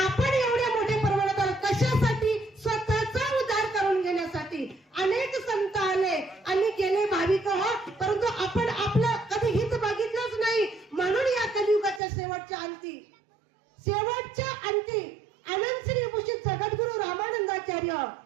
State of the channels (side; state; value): left; drops out; at 12.0 s